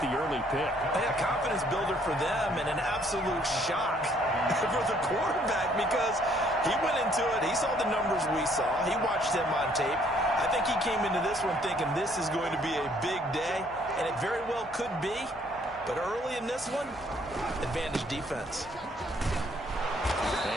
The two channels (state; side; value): noise; left; hum, 24 dB below the sound